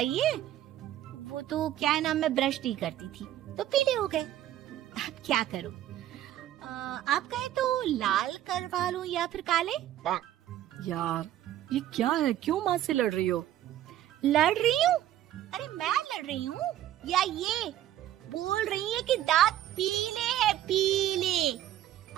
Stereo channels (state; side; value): quieter; left; 12.7 dB